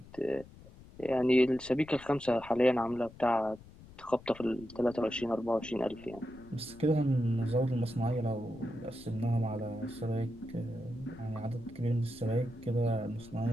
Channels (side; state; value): left; noise; rumble, 20 dB below the sound